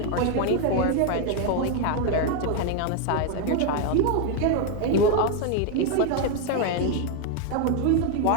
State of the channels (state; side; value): different; both; correlation 0.01